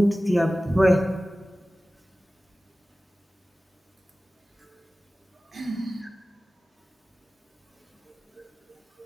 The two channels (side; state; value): both; normal; correlation 0.97